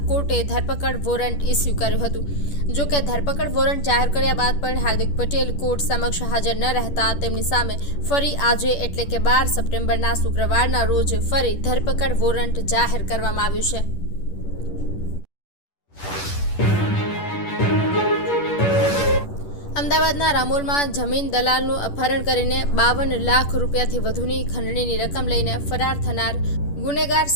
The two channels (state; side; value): late; right; 10 ms